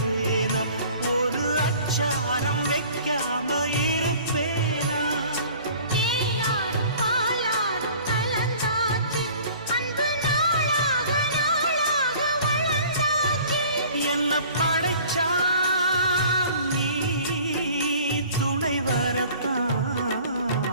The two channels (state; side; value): inverted; both; correlation -0.48